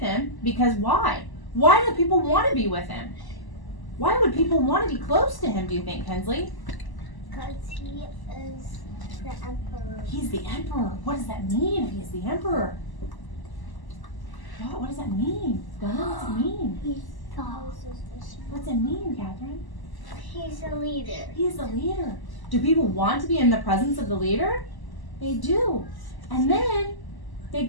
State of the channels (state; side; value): late; right; 1.0 ms